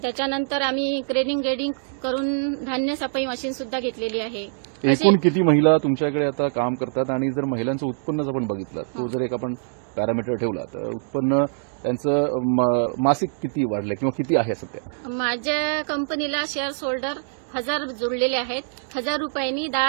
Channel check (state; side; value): silent; left; digital silence